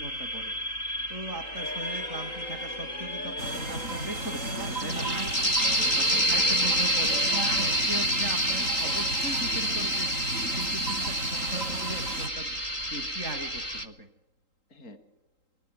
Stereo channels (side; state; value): right; late; 3.8 ms